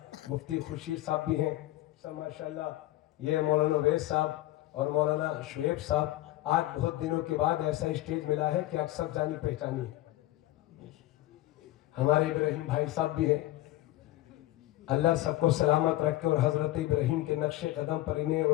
مفتی خورشید صاحب بھی ہیں سب ماشاءاللہ. یہ مولانا ویس صاحب اور مولانا شعیب صاحب, آج بہت دنوں کے بعد ایسا اسٹیج ملا ہے کہ اکثر جانی پہچانی ہے. ہمارے ابراہیم بھائی صاحب بھی ہیں, اللہ سب کو سلامت رکھے اور حضرت ابراہیم کے نقش قدم پر انہیں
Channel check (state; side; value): quieter; right; 16.3 dB